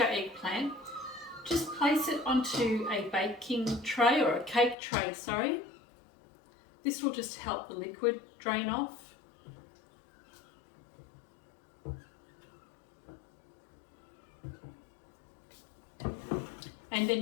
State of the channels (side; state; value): right; drops out; at 4.8 s